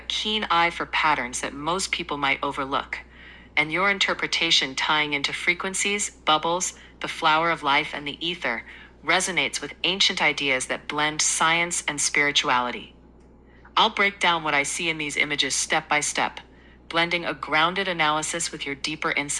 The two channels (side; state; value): both; identical; correlation 1.00